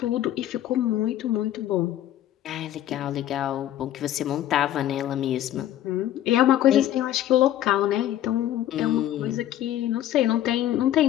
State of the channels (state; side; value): quieter; right; 12.5 dB